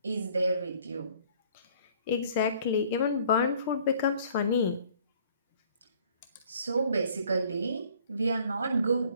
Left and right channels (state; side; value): inverted; both; correlation -0.57